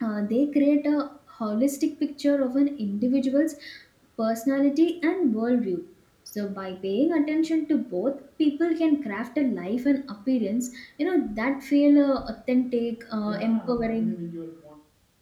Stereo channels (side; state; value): both; identical; correlation 1.00